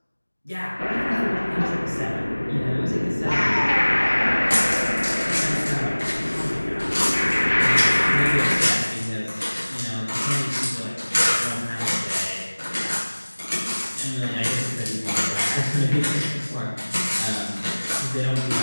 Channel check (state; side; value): inverted; both; correlation -1.00